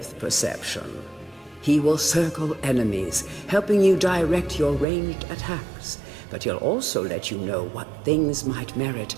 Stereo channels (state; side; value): drops out; left; at 4.9 s